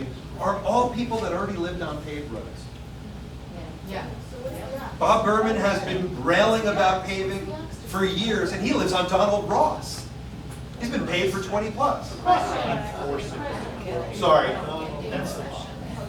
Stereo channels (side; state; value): both; identical; correlation 1.00